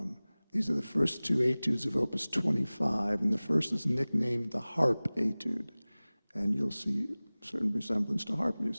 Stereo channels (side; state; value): both; inverted; correlation -0.99